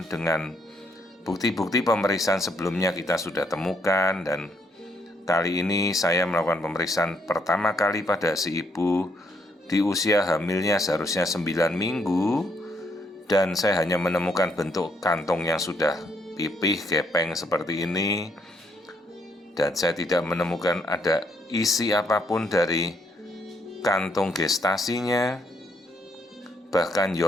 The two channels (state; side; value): normal; both; correlation 0.72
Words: dengan bukti-bukti pemeriksaan sebelumnya kita sudah temukan, dan kali ini saya melakukan pemeriksaan pertama kali pada si ibu di usia hamilnya seharusnya 9 minggu, dan saya hanya menemukan bentuk kantong yang sudah pipih, gepeng seperti ini, dan saya tidak menemukan ada isi apapun dari kantung gestasinya. Bahkan